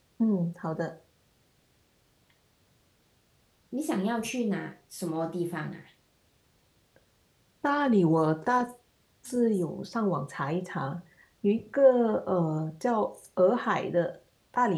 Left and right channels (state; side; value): identical; both; correlation 1.00